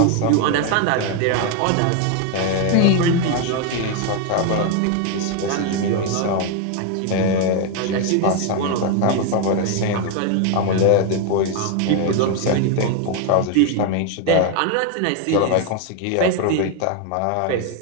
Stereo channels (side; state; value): both; different; correlation 0.01